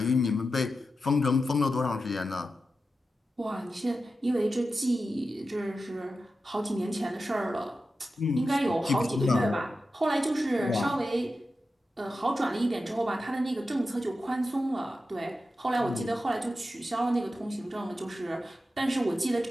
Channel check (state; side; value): normal; both; correlation 0.91